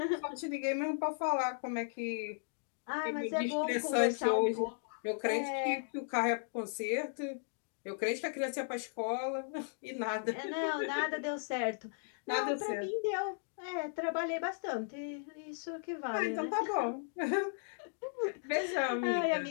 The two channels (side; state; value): right; silent; digital silence